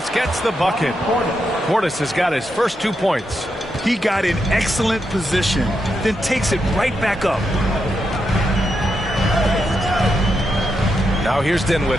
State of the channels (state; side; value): normal; both; correlation 0.84